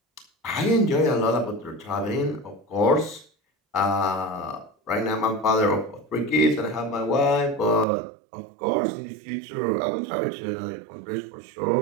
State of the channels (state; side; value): drops out; left; at 7.9 s